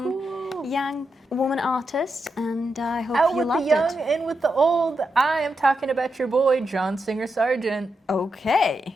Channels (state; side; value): normal; both; correlation 0.85